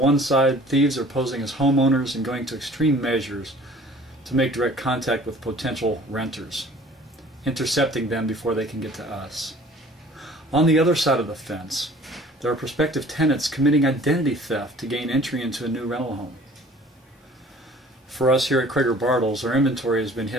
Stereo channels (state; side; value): normal; both; correlation 0.50